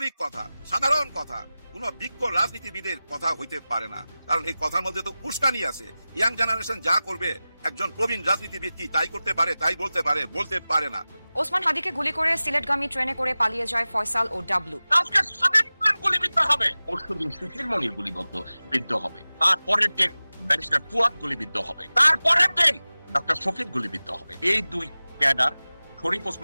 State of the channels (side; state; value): both; inverted; correlation -0.97